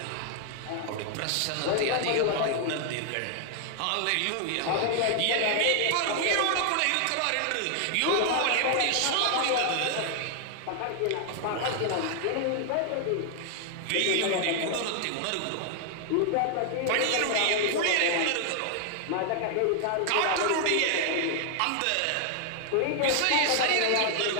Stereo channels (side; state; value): both; different; correlation 0.00